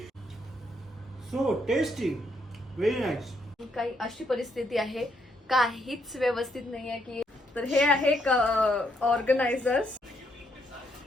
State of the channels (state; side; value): normal; both; correlation 0.74